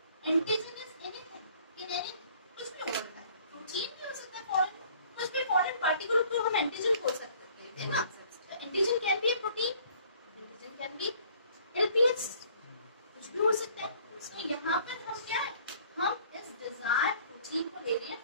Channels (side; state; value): both; inverted; correlation -0.57